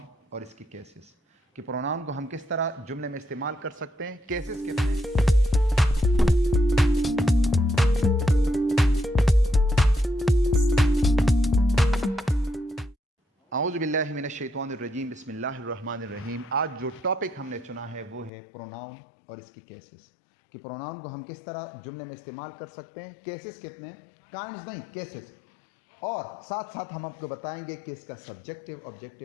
और इसकी केसेस, कि प्रोनाउन को हम किस तरह जुमले में इस्तेमाल कर सकते हैं, केसेस कितने हैं। औज़ु बिल्लाहि मिनश्शैतानिर्रजीम, बिस्मिल्लाहिर्रहमानिर्रहीम। आज जो टॉपिक हमने चुना है वो है प्रोनाउन और इसकी केसेस, कि प्रोनाउन को हम किस तरह जुमले में इस्तेमाल कर सकते हैं, केसेस कितने, काइंड्स नहीं, केसेस। और साथ साथ हम आपको बताएंगे कि इसका सब्जेक्टिव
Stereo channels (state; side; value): drops out; right; at 18.3 s